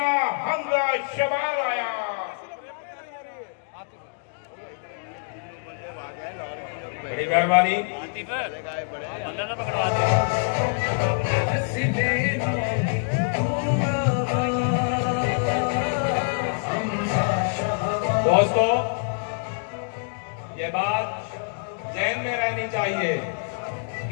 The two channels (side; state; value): right; silent; digital silence